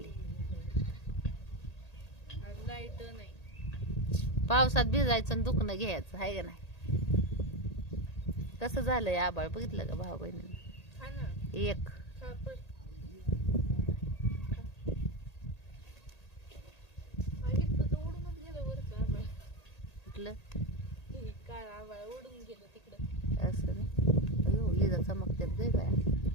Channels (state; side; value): late; right; 1.8 ms